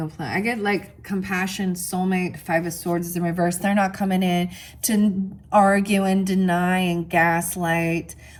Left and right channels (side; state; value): both; identical; correlation 1.00